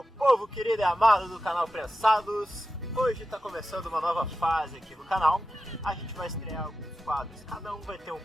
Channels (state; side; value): normal; both; correlation 0.92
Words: povo querido e amado do canal Prensados. Hoje está começando uma nova fase aqui no canal. A gente vai estrear alguns quadros, cada um vai ter um